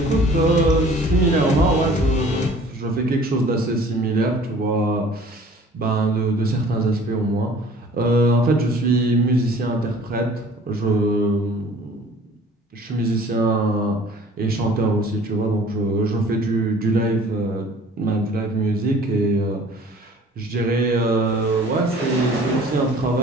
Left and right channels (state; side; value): normal; both; correlation 0.50